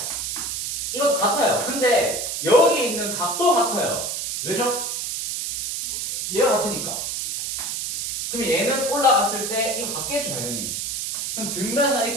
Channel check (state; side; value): noise; right; hiss, 3 dB below the sound